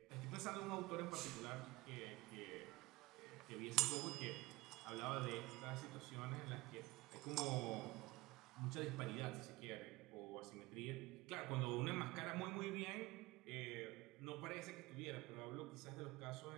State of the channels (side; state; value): left; quieter; 20.5 dB